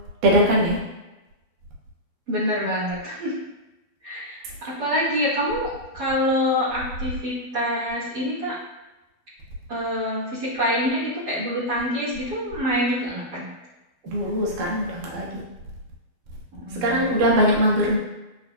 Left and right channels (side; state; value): left; late; 12 ms